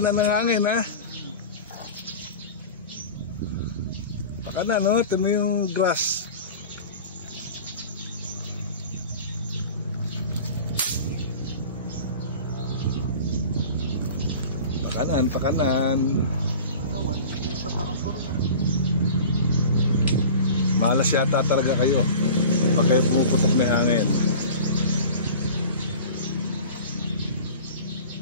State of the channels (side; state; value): both; inverted; correlation -0.38